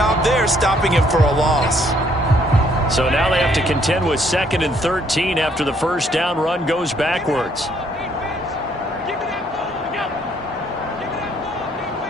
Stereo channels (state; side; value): normal; both; correlation 0.67